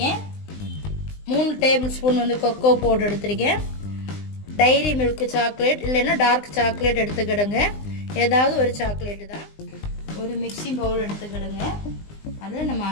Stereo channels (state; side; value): late; right; 20 ms